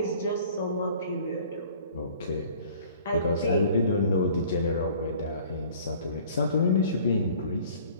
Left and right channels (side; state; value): both; inverted; correlation -0.51